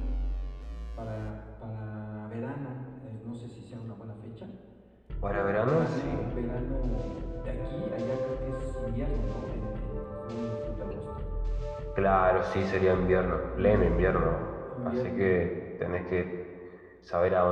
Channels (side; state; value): both; identical; correlation 1.00